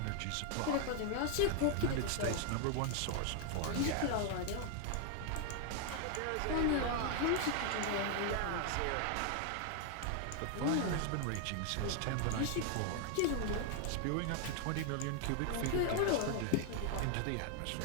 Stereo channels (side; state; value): both; different; correlation 0.00